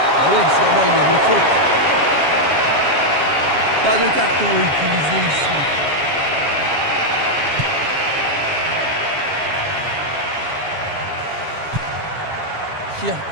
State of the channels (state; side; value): late; left; 7.3 ms